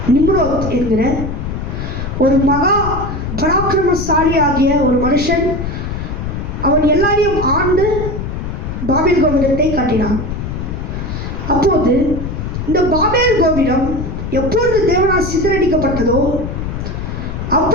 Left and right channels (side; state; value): left; noise; rumble, 5 dB below the sound